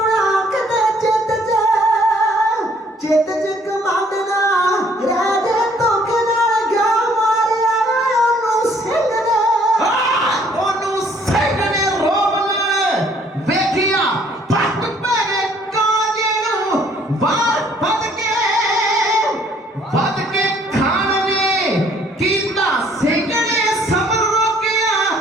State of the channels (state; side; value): normal; both; correlation 0.61